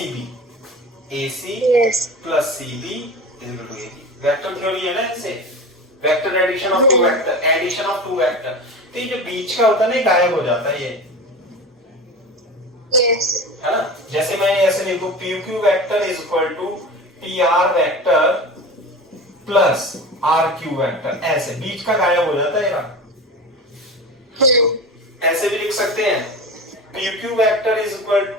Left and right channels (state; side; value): normal; both; correlation 0.31